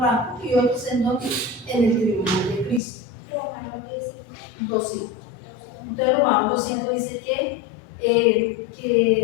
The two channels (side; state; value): right; drops out; at 2.8 s